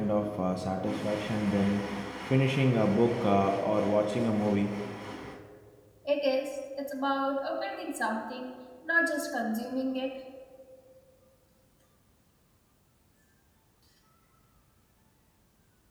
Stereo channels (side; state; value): both; identical; correlation 1.00